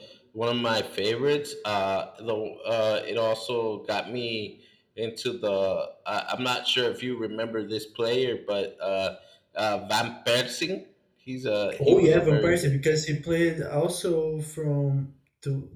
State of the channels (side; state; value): both; identical; correlation 1.00